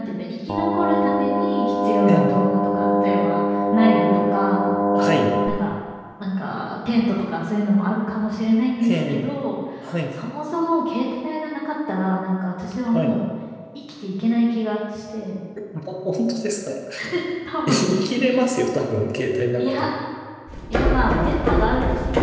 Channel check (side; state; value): both; identical; correlation 1.00